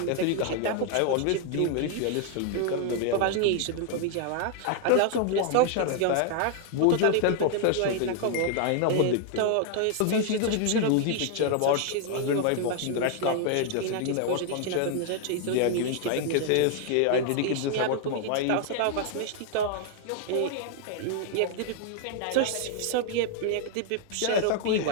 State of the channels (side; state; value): both; different; correlation 0.00